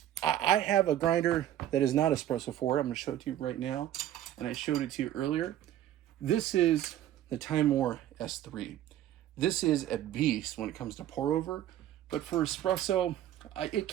have a grinder that is not espresso forward. I'm going to show it to you right now, and I showed it to you earlier. This is the Time.Our S3. This is a beast when it comes to pour over, but for espresso, it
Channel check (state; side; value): quieter; left; 12.1 dB